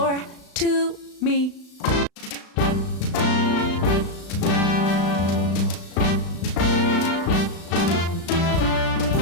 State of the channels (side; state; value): right; late; 35 ms